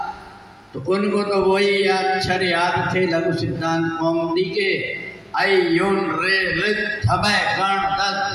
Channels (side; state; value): both; identical; correlation 1.00